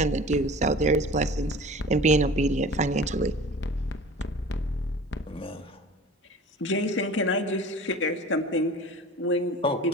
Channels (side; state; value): both; normal; correlation 0.41